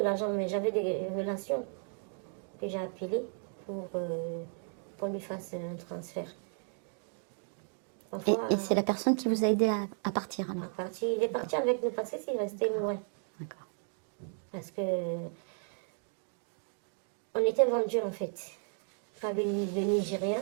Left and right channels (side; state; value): left; silent; 55 dB below the other